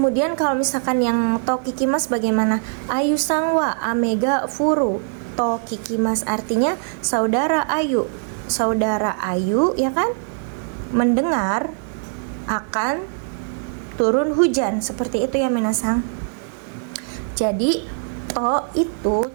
kalau misalkan yang to kikimas bagaimana? Ayu sangwa amega furu to kikimas, artinya saudara Ayu ya kan, mendengar akan turun hujan, seperti itu ya minasang. Jadi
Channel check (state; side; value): silent; left; digital silence